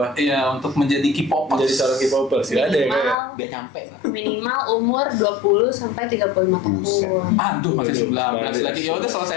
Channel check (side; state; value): right; drops out; at 3.2 s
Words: iya untuk menjadi K-popers? Menjadi seorang K-popers nggak ada ya kayak. Biar nyampe lah. Minimal umur 20 sampai 35 Buset. tahun. Aduh, masih 19 Masih. lagi. Ya udah